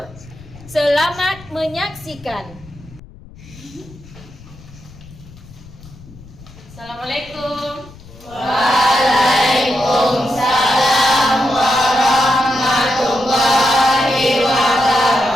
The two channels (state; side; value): noise; left; rumble, 20 dB below the sound